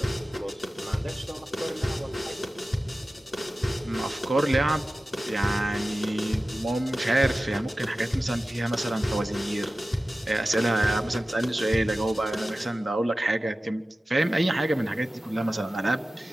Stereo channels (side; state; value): both; normal; correlation 0.95